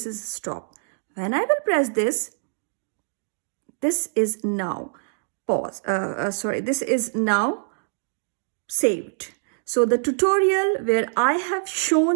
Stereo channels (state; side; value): silent; left; digital silence